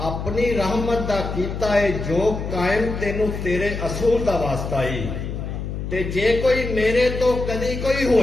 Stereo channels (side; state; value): left; noise; hum, 5 dB below the sound